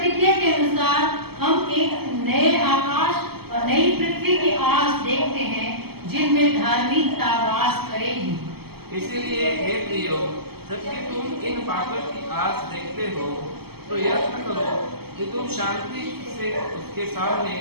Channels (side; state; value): left; late; 0.96 ms